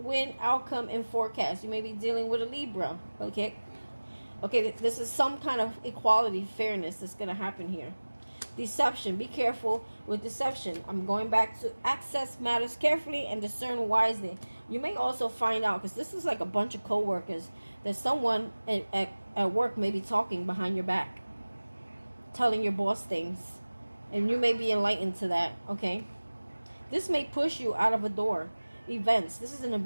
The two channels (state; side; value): inverted; both; correlation -1.00